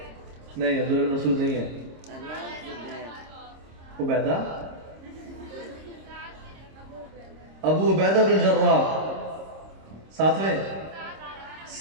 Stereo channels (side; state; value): left; late; 26 ms